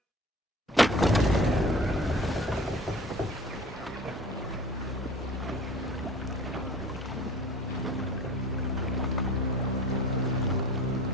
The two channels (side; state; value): both; normal; correlation 0.43